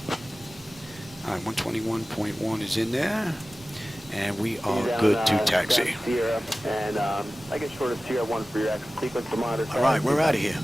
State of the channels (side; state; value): both; normal; correlation 0.96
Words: All right, 121.1 is in there. And we are good to taxi. Sierra, and I get short of Sierra 1 for your exit sequence to monitor. All right, we're out of here.